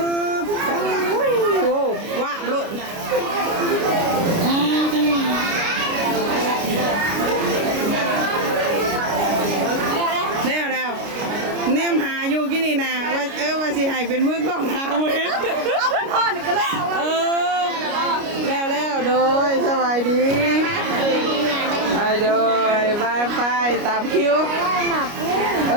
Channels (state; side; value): late; left; 29 ms